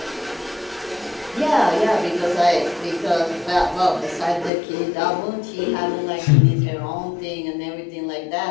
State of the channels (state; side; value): drops out; right; at 4.5 s